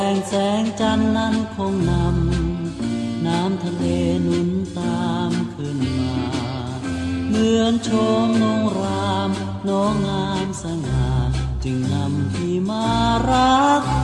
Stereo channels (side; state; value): both; identical; correlation 1.00